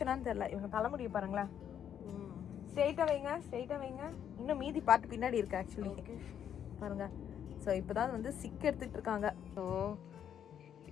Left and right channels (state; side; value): quieter; right; 9.1 dB